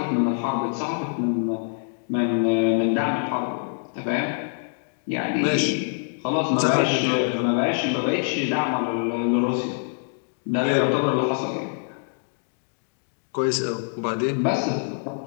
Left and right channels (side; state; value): right; silent; digital silence